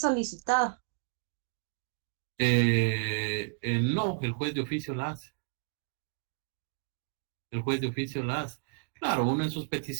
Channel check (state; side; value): silent; left; digital silence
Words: No, el juez de oficio la hace. El juez de oficio la hace. Claro, uno en sus